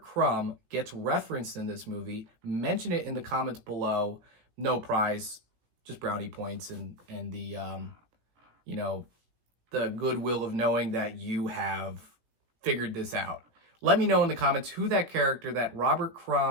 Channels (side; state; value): left; late; 17 ms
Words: gets referenced in this movie. Mention it in the comments below. No prize, just brownie points and the the goodwill of knowing that you have figured this out. Let me know in the comments who that character, that Robert